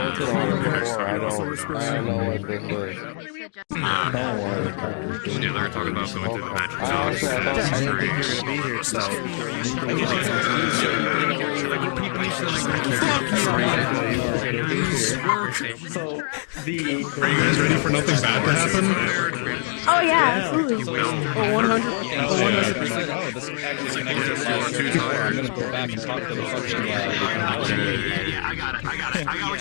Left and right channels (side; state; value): right; silent; 58 dB below the other